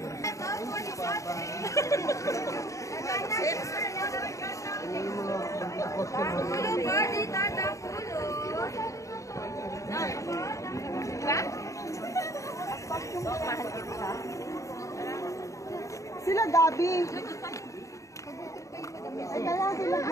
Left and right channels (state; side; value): late; right; 0.15 ms